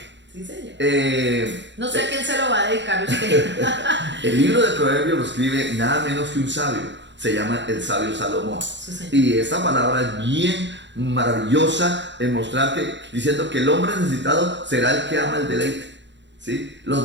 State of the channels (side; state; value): left; late; 0.52 ms